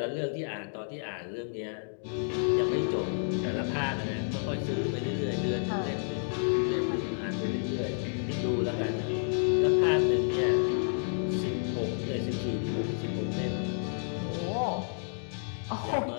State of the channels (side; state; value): right; silent; digital silence